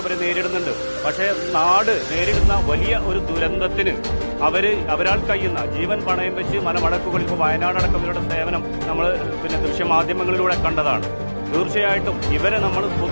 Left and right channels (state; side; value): inverted; both; correlation -1.00